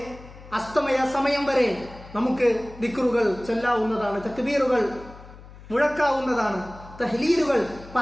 അസ്തമയ സമയം വരെ നമുക്ക് ദിക്റുകൾ ചൊല്ലാവുന്നതാണ്, തക്ബീറുകൾ മുഴക്കാവുന്നതാണ്, തഹ്ലീലുകൾ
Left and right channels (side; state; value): left; noise; hum, 18 dB below the sound